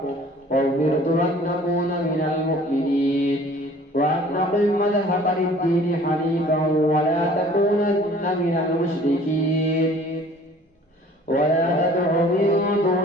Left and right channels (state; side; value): normal; both; correlation 0.51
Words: وأمرت أن أكون من المؤمنين وأن أقم مذهب للدين حنيفا ولا تكونن من المشركين ولا تدع من